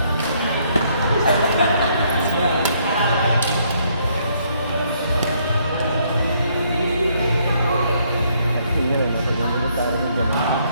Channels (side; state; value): both; inverted; correlation -0.69